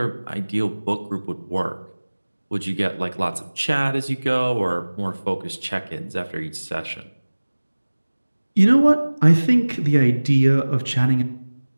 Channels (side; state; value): both; inverted; correlation -1.00